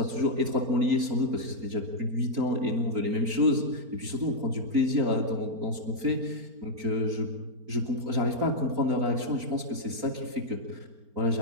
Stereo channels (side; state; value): left; late; 4.4 ms